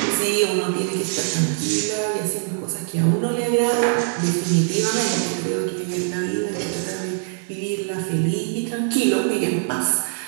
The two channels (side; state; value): left; silent; 64 dB below the other